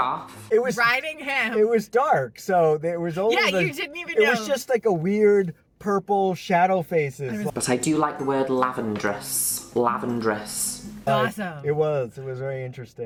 it was Riding him. it was dark, so there was only Yeah, you didn't even It know. was just like a weird purple shadow faces. But I do like the word lavendrous. Lavendrous. Awesome. It was very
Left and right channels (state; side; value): identical; both; correlation 1.00